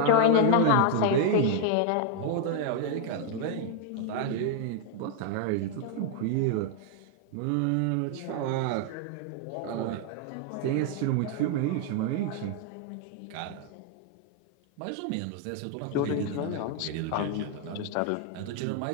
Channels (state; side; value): different; both; correlation 0.00